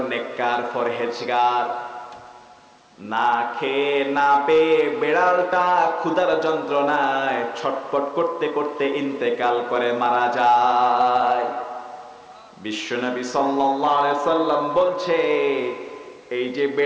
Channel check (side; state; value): both; identical; correlation 1.00